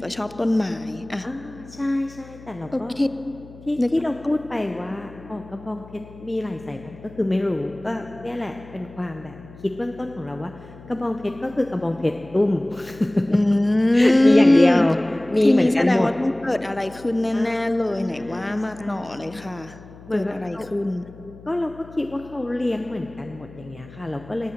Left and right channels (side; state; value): left; noise; hum, 20 dB below the sound